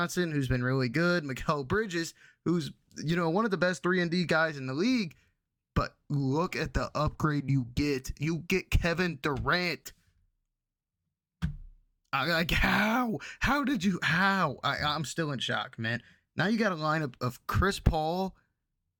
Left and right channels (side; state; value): both; identical; correlation 1.00